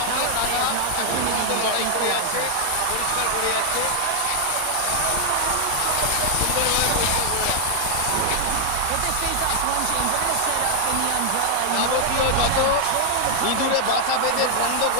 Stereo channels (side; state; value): both; different; correlation 0.00